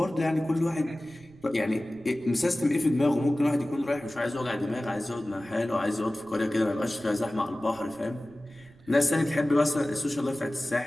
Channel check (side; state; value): right; noise; rumble, 25 dB below the sound